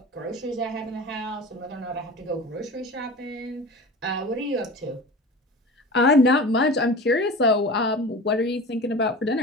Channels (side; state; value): both; normal; correlation 0.35